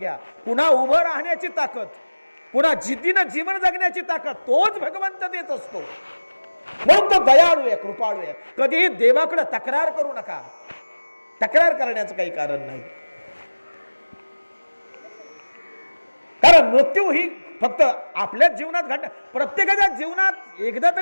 पुन्हा उभं राहण्याची ताकद, पुन्हा जिद्दीनं जीवन जगण्याची ताकद तोच भगवंत देत असतो. म्हणून तो दयाळू आहे, कृपाळू आहे. कधीही देवाकडे तक्रार करू नका. तक्रार करण्याचं काही कारण नाही. कारण मृत्यू ही फक्त आपल्याच जीवनात घडणार, प्रत्येकाच्या जीवनात एकदा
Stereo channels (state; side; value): inverted; both; correlation -1.00